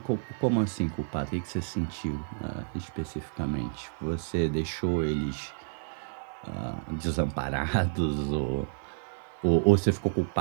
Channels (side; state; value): left; silent; 58 dB below the other